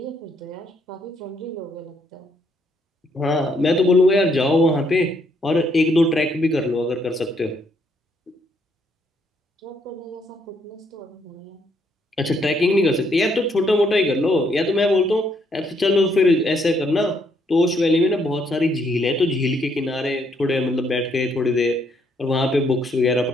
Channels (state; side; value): normal; both; correlation 0.72